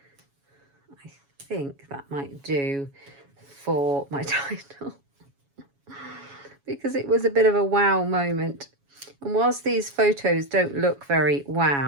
I think that might do for my title. Because it was a bit of a wow moment. And whilst these photos don't look very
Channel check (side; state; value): left; late; 7.2 ms